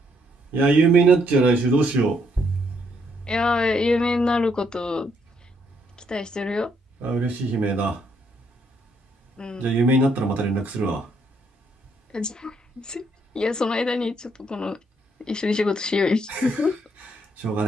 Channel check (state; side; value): normal; both; correlation 0.72